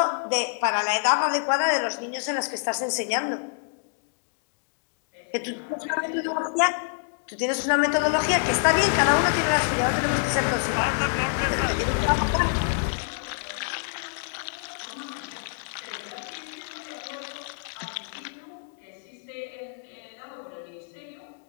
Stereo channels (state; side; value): silent; right; digital silence